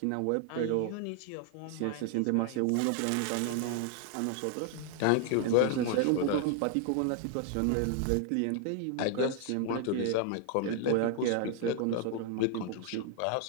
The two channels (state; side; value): different; both; correlation 0.00